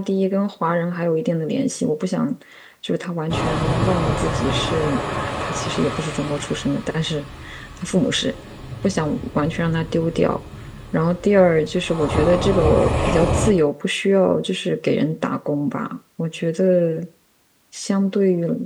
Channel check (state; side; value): identical; both; correlation 1.00